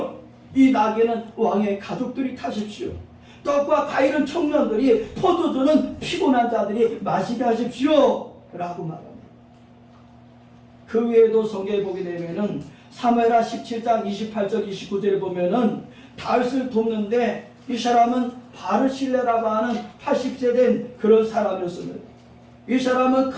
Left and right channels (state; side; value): identical; both; correlation 1.00